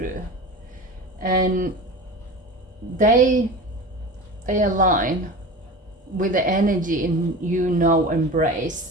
And they align with the energy in you now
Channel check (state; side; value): normal; both; correlation 0.33